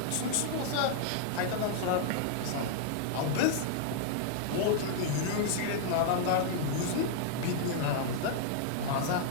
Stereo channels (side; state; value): both; different; correlation 0.00